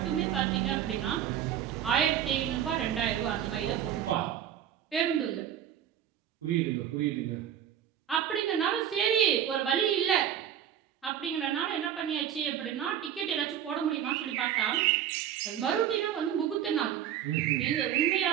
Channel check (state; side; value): quieter; left; 10.0 dB